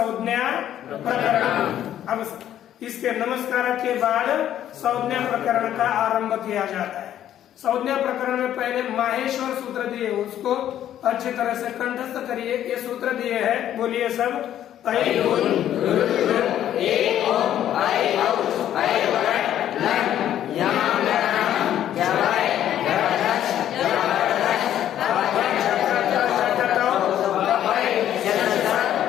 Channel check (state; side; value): quieter; right; 11.2 dB